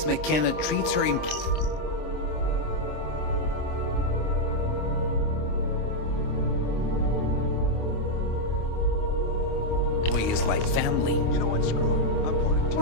McKenna treats her employees like family. You know what? Screw it. I'm going to...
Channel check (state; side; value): late; right; 26 ms